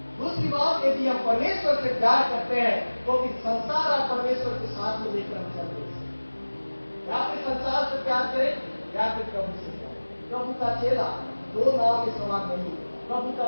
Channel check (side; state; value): both; inverted; correlation -1.00